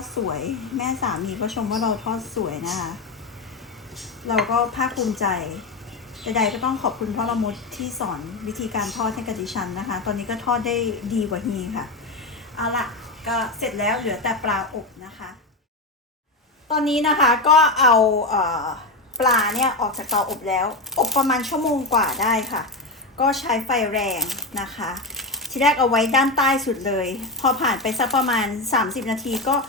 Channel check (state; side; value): quieter; right; 3.1 dB